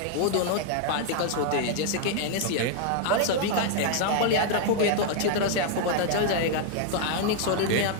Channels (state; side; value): different; both; correlation 0.00